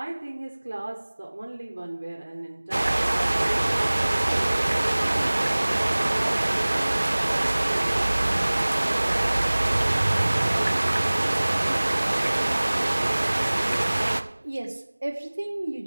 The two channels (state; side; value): inverted; both; correlation -1.00